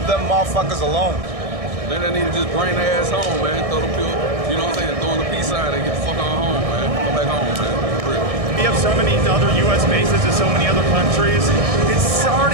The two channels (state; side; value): late; left; 1.6 ms